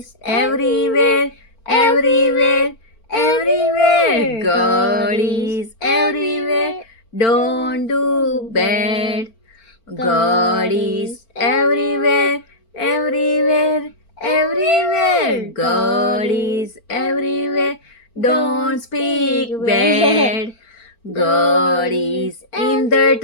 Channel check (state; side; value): late; right; 4.4 ms